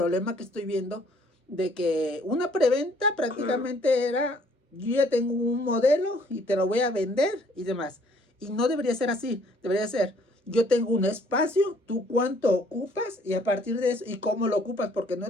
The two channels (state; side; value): normal; both; correlation 0.61